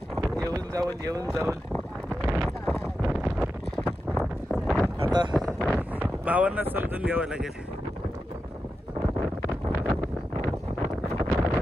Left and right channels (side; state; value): both; normal; correlation 0.90